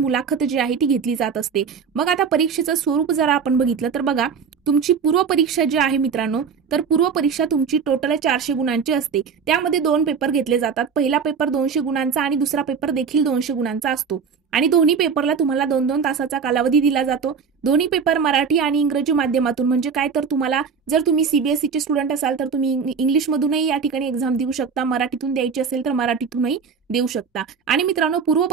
जी आहे ती घेतली जात असते। मग आता परीक्षेचं स्वरूप जर आपण बघितलं तर बघा, तुमची पूर्व परीक्षा जी आहे मित्रांनो, तर पूर्व परीक्षा तुमची टोटल 400 गुणांची असते। त्यामध्ये 2 पेपर घेतले जातात, पहिला पेपर 200 गुणांचा आणि दुसरा पेपर देखील 200 गुणांचा असतो, आणि दोन्ही पेपरला तुम्हाला 2-2 तासाचा कालावधी दिला जातो। दोन्ही पेपर मराठी आणि इंग्रजी माध्यमातून, म्हणजे काय तर तुम्हाला जर तुम्ही सीबीएसईचे स्टुडंट असाल तर तुम्ही इंग्लिशमधूनही या ठिकाणी एक्झाम देऊ शकता, मराठीतून द्यायची असेल तर मराठीतूनही देऊ शकता। आणि मित्रांनो, पूर्व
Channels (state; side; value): quieter; left; 6.1 dB